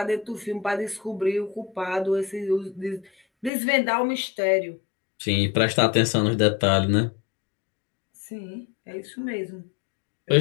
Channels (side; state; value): right; drops out; at 3.5 s